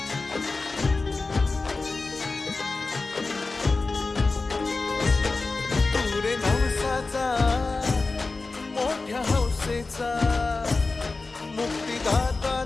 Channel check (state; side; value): quieter; right; 3.7 dB